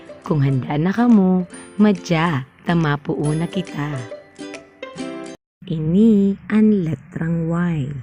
Kung handa na kamo, madya, tamapuo na kita. Ini ang letrang Y.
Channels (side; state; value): both; identical; correlation 1.00